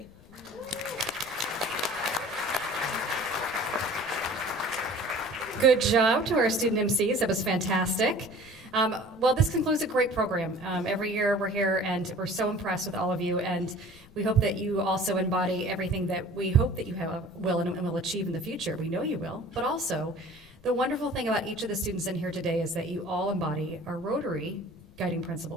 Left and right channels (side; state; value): left; noise; rumble, 24 dB below the sound